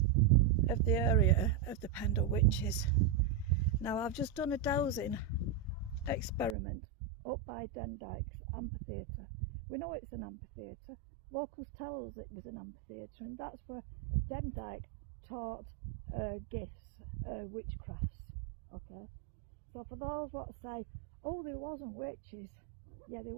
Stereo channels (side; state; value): left; drops out; at 6.6 s